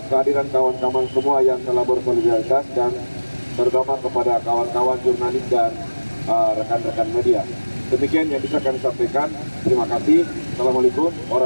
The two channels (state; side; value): inverted; both; correlation -1.00